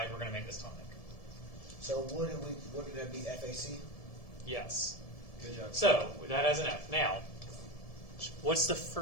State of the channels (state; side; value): late; right; 1.7 ms